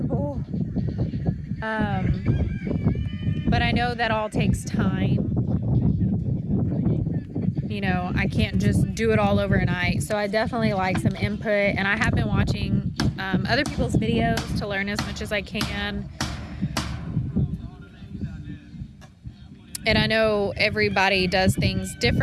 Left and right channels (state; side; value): identical; both; correlation 1.00